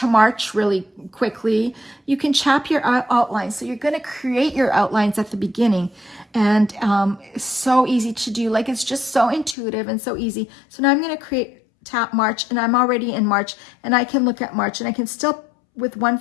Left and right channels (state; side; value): drops out; right; at 9.6 s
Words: March really quickly, you can chap your outlines. So you're going to create your outlines at the beginning, and so easy to do. Like, it's just so intuitive and so easy. So now I'm going to tap March, and I'm already in March, and I can look at March, and I can still, with one